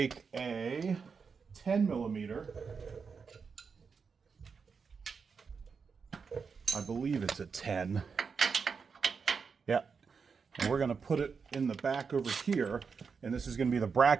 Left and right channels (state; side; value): quieter; left; 5.6 dB